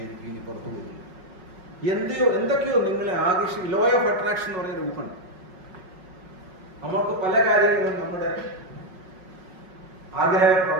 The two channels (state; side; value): late; left; 5.4 ms